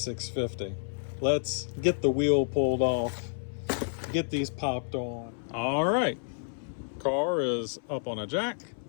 Let's get the wheel pulled off, get these popped on. All right, car is up on a jack.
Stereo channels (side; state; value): right; silent; 58 dB below the other